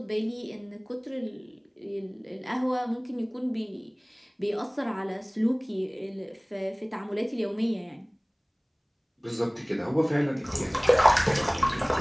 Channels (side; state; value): both; identical; correlation 1.00